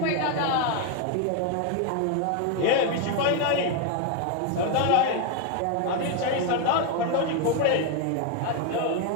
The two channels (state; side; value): different; both; correlation 0.01